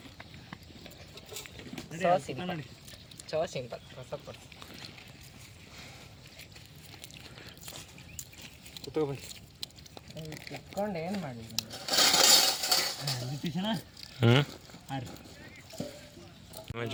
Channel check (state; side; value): identical; both; correlation 1.00